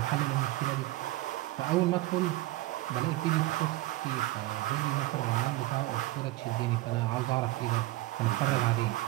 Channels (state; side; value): quieter; left; 17.6 dB